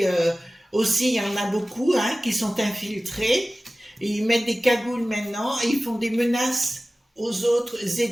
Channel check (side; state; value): both; normal; correlation 0.97